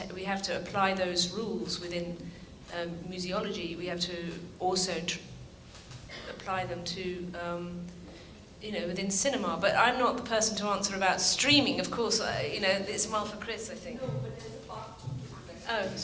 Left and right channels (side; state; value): both; identical; correlation 1.00